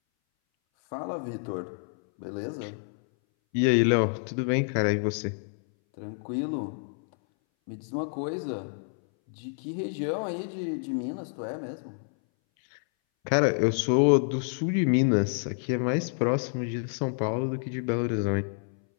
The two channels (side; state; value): right; silent; 59 dB below the other